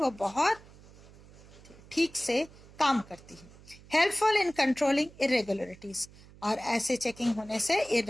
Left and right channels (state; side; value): noise; right; hum, 22 dB below the sound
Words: बहुत ठीक से काम करती है. Helpful in controlling irregularities. और ऐसे चेकिंग होने से